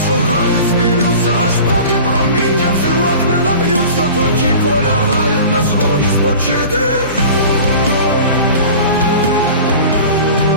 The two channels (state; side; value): inverted; both; correlation -0.39